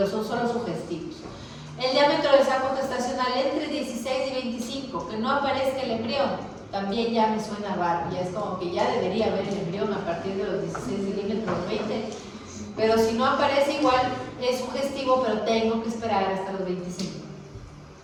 son solo sugestivos. El diámetro del saco gestacional entre 16 y 25, que no aparezca el embrión, también ya me suena raro, ya es como que ya debería haber el embrión a partir de los 16 milímetros, 20, pero si no aparece igual es sugestivo, pero tengo que esperar hasta los 25.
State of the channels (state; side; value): identical; both; correlation 1.00